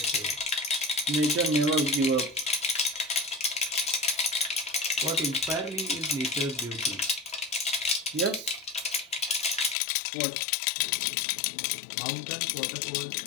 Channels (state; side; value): drops out; right; at 9.8 s